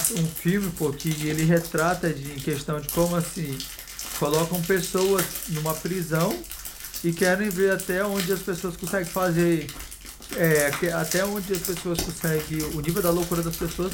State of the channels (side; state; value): both; identical; correlation 1.00